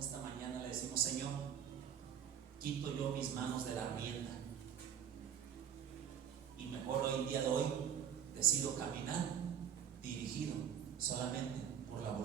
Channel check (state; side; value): quieter; left; 8.7 dB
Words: mañana le decimos: Señor, quito yo mis manos de la rienda, y mejor hoy, el día de hoy, decido caminar dirigido solamente por la